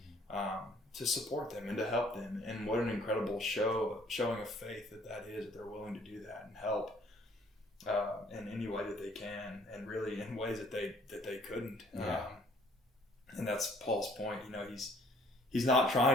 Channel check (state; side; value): normal; both; correlation 0.59